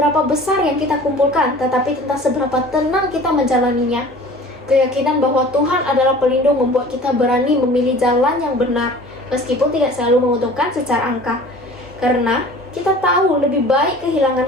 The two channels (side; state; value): both; normal; correlation 0.44